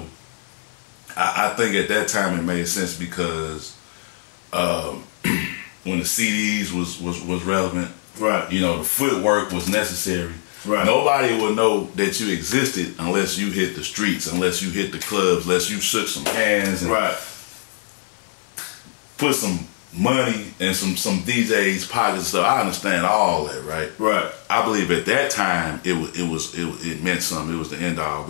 I think at that time it made sense because when the CDs was relevant, right, you know, the footwork was necessary. Right. Nobody will know that you existed unless you hit the streets, unless you hit the clubs, unless you shook some hands and right, put some money in some DJs' pockets. So I understand all that, right? Right. I believe at that time it meant something. It was the end all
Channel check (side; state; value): right; silent; digital silence